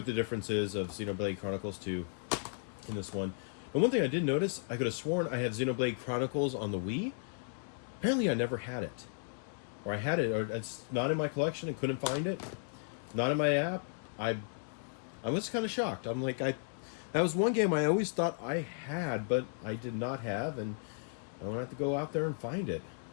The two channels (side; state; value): right; silent; digital silence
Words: the difference is of Xenoblade Chronicles 2 and this one. And one thing I did notice, I could have sworn I had Xenoblade Chronicles on the Wii. Apparently I never had it. Or I had it, or it's not in my collection and couldn't find it. Not in my app. I was kind of shocked. I'm like, that was one game I always thought I had, but I did not have, and I'm gonna have to go out there and find it.